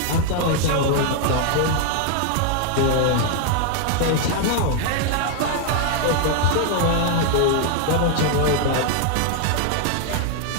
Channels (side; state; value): both; different; correlation 0.00